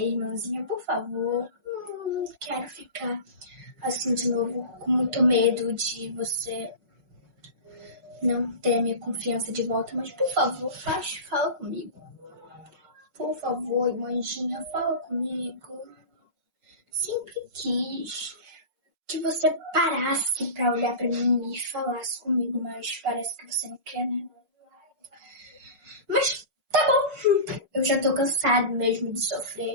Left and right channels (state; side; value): late; left; 5.4 ms